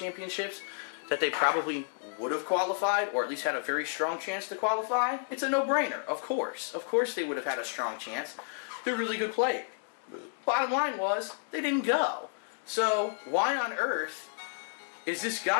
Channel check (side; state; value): right; silent; digital silence